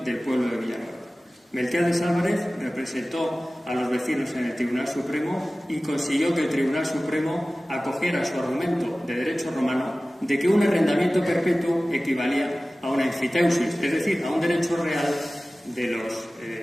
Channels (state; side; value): normal; both; correlation 0.97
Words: del pueblo de Villanueva. Melquiades Álvarez representó a los vecinos en el Tribunal Supremo y consiguió que el Tribunal Supremo acogiera su argumento de derecho romano de que un arrendamiento perpetuo equivalía a una enfiteusis, es decir, a un derecho real